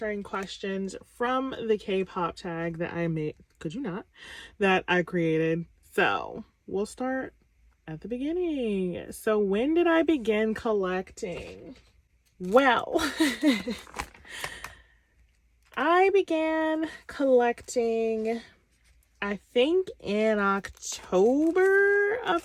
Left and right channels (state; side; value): identical; both; correlation 1.00